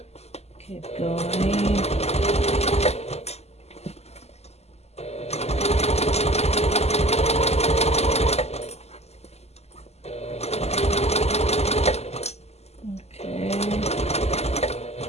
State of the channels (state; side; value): late; right; 0.30 ms